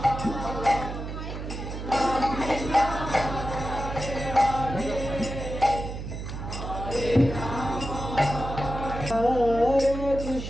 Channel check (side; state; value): right; noise; hum, 7 dB below the sound